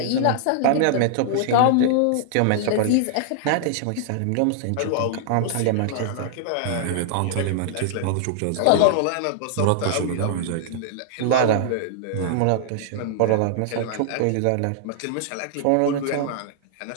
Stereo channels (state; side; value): different; both; correlation -0.01